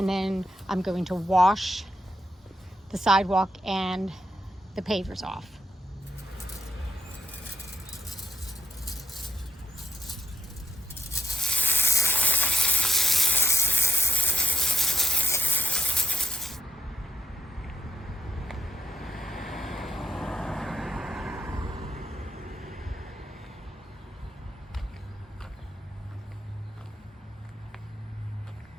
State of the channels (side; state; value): both; normal; correlation 0.82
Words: then I'm going to wash the sidewalk and the pavers off.